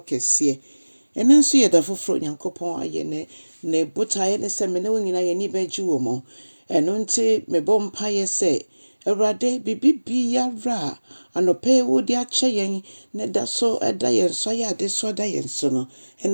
case. And then see the full Yankopon ayene, ne buta ne seminary in a nibe juomo, and unti me bompire say, a rade bibi ra, and no pay wood ya chayin, ne da so a dian so ya de so dian sono,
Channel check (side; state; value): both; inverted; correlation -1.00